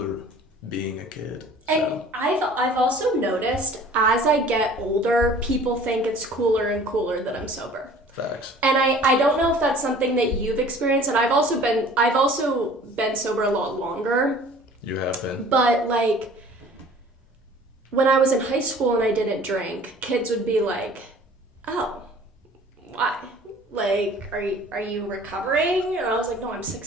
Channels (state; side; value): normal; both; correlation 0.49